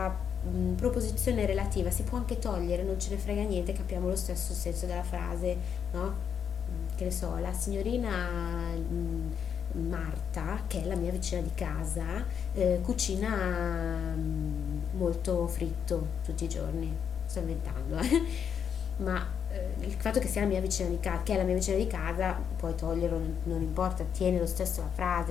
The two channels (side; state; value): right; quieter; 7.7 dB